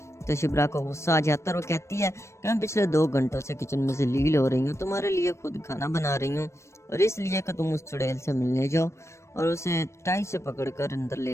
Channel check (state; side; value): late; right; 0.13 ms